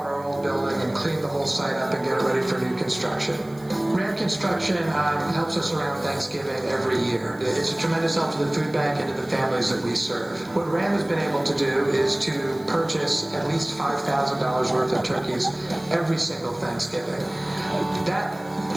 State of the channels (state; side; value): noise; right; hiss, 26 dB below the sound